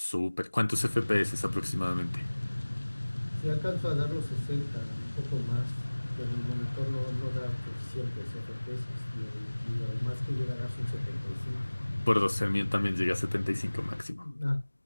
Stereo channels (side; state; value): both; inverted; correlation -1.00